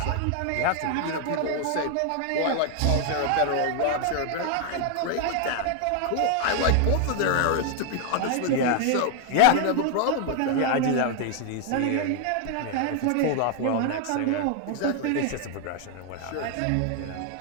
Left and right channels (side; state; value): both; different; correlation 0.00